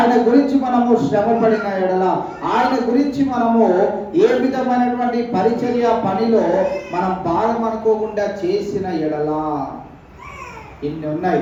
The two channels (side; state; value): both; identical; correlation 1.00